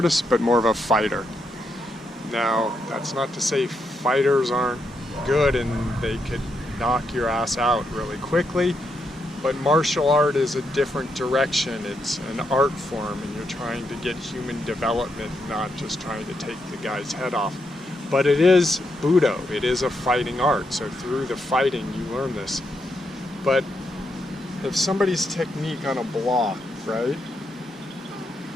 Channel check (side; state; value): both; normal; correlation 0.81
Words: but more of a fighter. Now, that's not to say fighters aren't good and they could knock your ass out really quickly, but martial art is a different direction. It's an art form, and you're trying to get human development, not just trying to take the guy's head off. But it is Budo, it is a fighting art, so through the fighting you learn this. But if somebody's technique on a block, right,